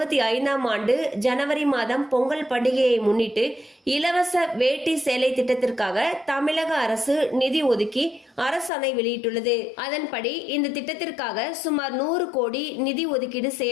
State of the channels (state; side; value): drops out; right; at 8.7 s